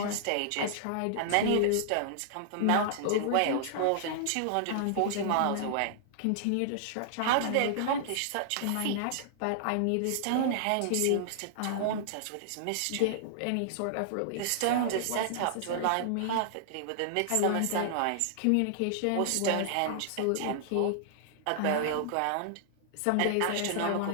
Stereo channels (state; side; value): different; both; correlation -0.01